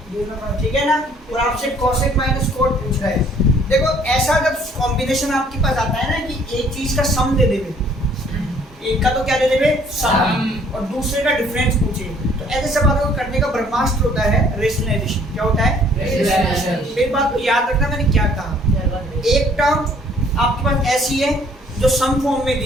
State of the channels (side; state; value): both; normal; correlation 0.59